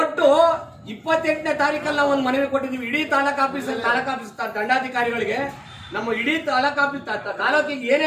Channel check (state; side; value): identical; both; correlation 1.00